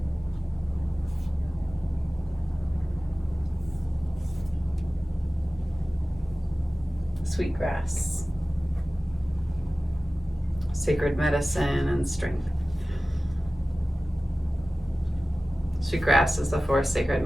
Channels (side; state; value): both; normal; correlation 0.97